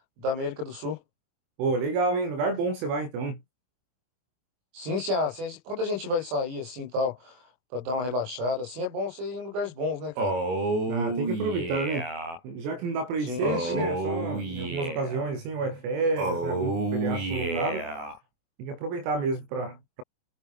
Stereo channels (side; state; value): left; late; 24 ms